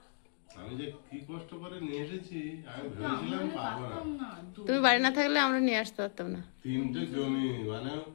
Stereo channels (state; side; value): silent; right; digital silence